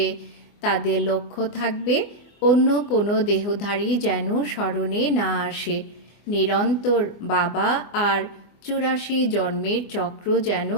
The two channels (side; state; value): right; late; 24 ms